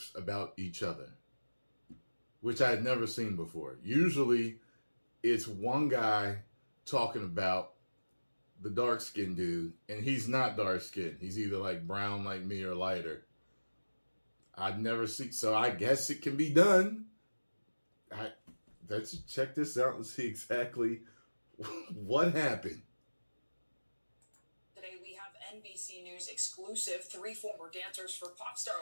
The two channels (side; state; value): both; inverted; correlation -1.00